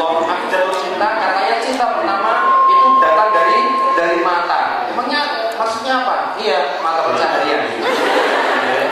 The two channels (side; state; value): both; identical; correlation 1.00